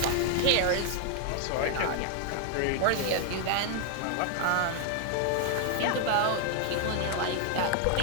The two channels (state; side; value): different; both; correlation 0.00